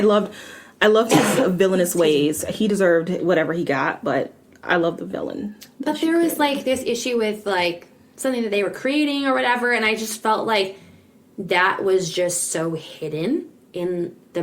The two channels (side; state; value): both; identical; correlation 1.00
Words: loved his villainous ways. He deserved whatever he got, but I love the villain. But there was like this issue with like something that they were creating or whatever, and I just felt like that was just so hidden in the